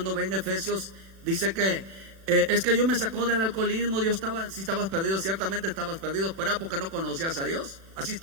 ve en Efesios, dice que es que Dios me sacó del alcoholismo. Dios estaba, si estabas perdido, ciertamente estabas perdido, pero era porque no conocías a Dios. Así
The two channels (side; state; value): left; late; 36 ms